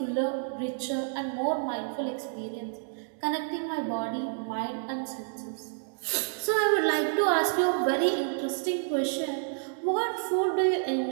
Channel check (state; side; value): silent; left; 58 dB below the other